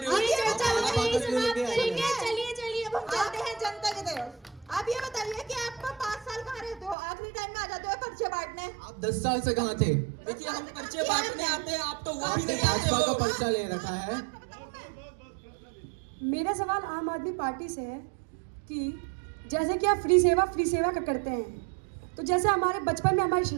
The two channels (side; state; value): left; drops out; at 7.0 s